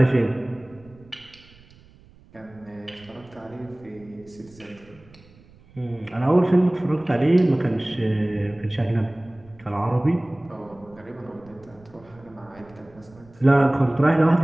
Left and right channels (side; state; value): right; noise; rumble, 26 dB below the sound